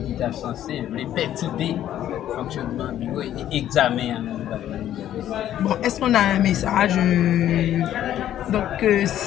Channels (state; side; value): quieter; right; 11.7 dB